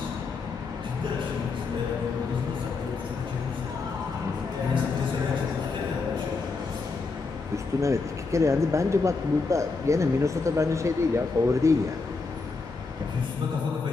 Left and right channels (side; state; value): right; quieter; 4.2 dB